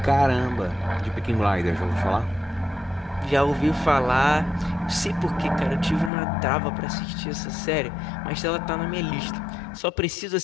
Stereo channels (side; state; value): right; drops out; at 6.1 s